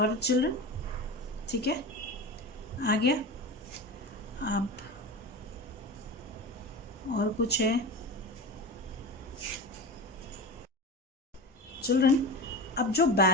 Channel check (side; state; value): both; normal; correlation 0.27